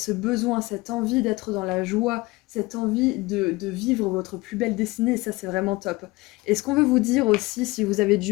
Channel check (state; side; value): quieter; right; 21.9 dB